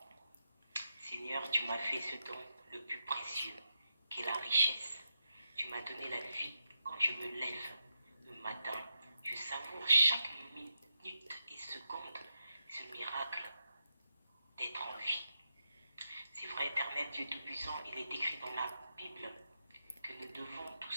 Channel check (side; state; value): both; inverted; correlation -0.86